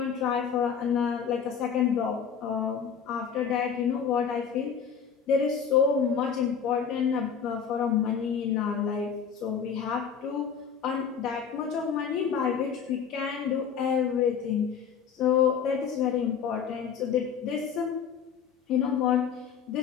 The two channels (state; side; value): quieter; right; 7.1 dB